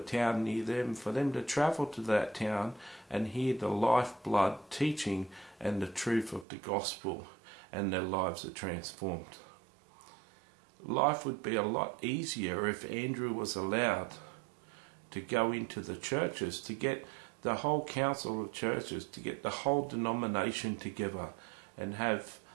near them, for them to travel to that town and hear the lifeblood teaching and the truth of the gospel, and their lives are transformed. Life would be a lot easier if Andrew was allowed to go into the churches, to get the whole council of churches, to get the whole denomination together and have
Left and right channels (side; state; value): left; drops out; at 6.5 s